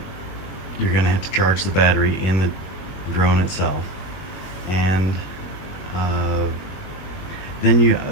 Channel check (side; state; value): right; late; 21 ms